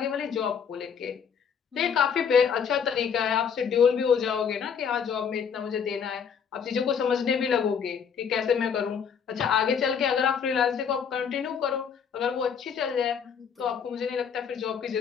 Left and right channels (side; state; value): right; quieter; 7.1 dB